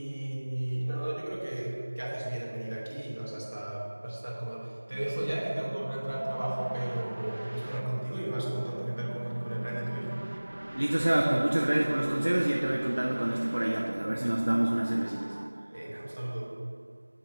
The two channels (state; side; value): inverted; both; correlation -1.00